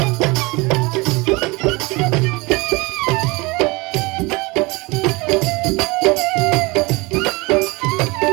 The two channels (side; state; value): left; quieter; 24.9 dB